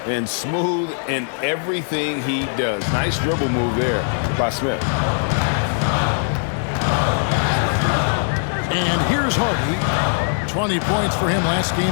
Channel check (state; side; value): silent; right; 65 dB below the other